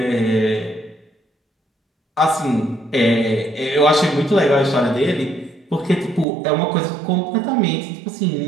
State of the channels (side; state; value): left; drops out; at 6.2 s